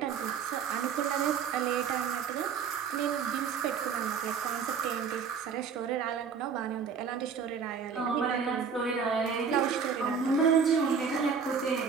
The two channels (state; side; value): quieter; left; 6.3 dB